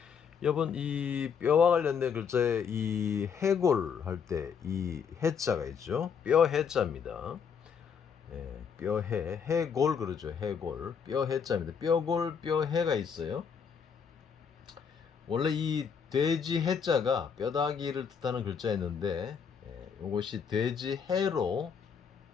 여러분 이 뼈와 관련된 글자에 이 해골 할 때 이 해자가 있죠. 뼈 해자입니다. 뼈해 해골 그러죠. 해골 뼈 해자입니다. 뼈골 뼈해가 있어요. 원래 이 돼지 해자가 뼈다귀를 뜻하는 글자였는데 이것이 돼지 해로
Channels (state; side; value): quieter; right; 6.7 dB